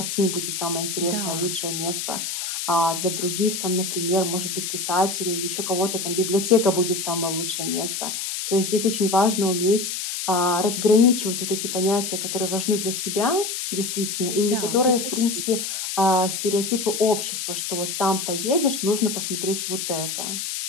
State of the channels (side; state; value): left; noise; hiss, 4 dB below the sound